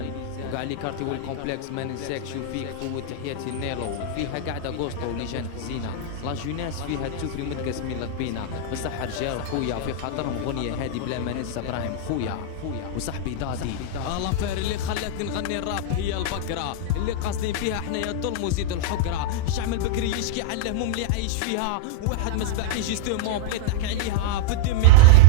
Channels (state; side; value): different; both; correlation -0.02